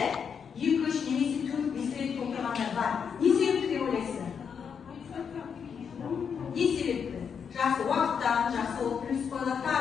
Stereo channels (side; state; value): right; quieter; 6.9 dB